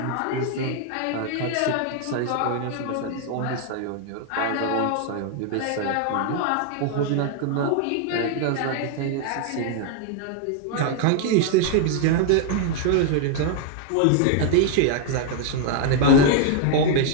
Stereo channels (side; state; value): both; different; correlation 0.00